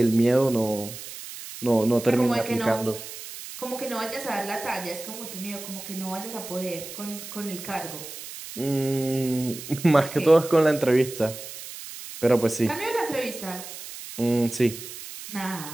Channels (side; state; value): right; noise; hiss, 12 dB below the sound